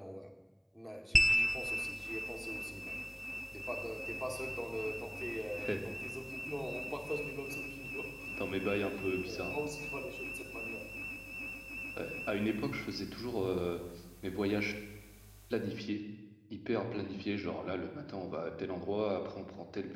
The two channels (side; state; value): both; identical; correlation 1.00